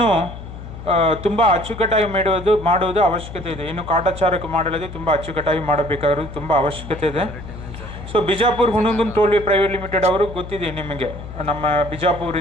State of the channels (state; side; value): noise; left; hum, 12 dB below the sound